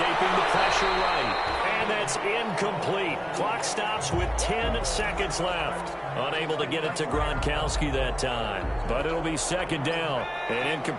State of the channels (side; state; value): both; identical; correlation 1.00